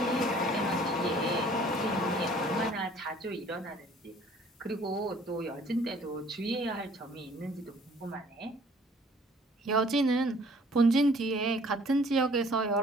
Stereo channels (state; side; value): normal; both; correlation 0.56